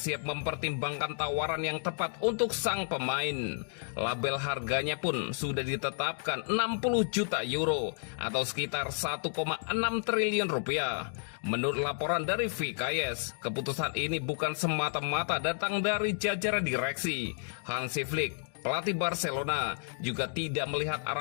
mempertimbangkan tawaran yang tepat untuk sang pemain. Label harganya pun sudah ditetapkan 60 juta euro atau sekitar 1,6 triliun rupiah. Menurut laporan dari VKS, keputusan ini bukan semata-mata datang dari jajaran direksi. Hansi Flick, pelatih Barcelona, juga tidak melihat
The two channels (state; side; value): silent; right; digital silence